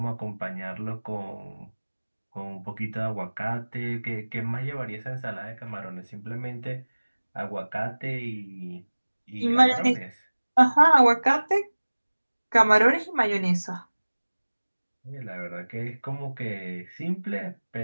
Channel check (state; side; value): inverted; both; correlation -1.00